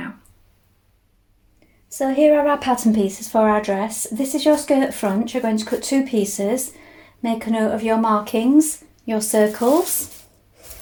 So here are our pattern pieces for our dress. This is your skirt front. You're going to cut two pieces. Make a note of your markings, your circles.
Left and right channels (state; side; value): identical; both; correlation 1.00